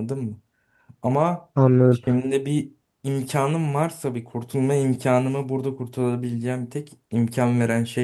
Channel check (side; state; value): both; identical; correlation 1.00